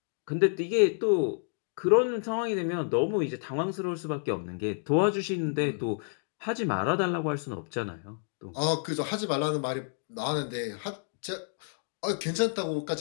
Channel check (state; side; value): silent; right; digital silence